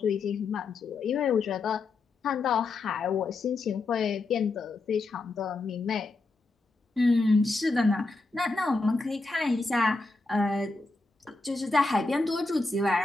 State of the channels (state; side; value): quieter; right; 3.5 dB